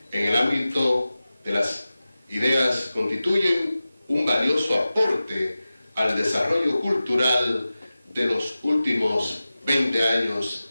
en el ámbito de las ideas constituyen un valioso aporte al desarrollo cultural de los últimos 20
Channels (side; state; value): both; inverted; correlation -0.95